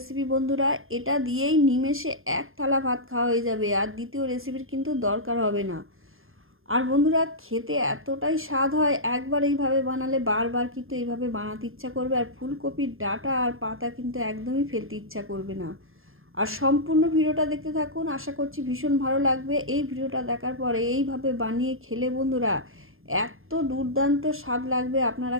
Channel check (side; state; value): left; late; 0.60 ms